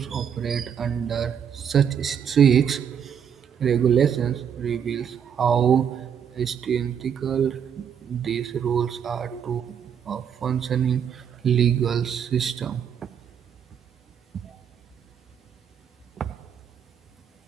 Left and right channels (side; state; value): left; quieter; 8.1 dB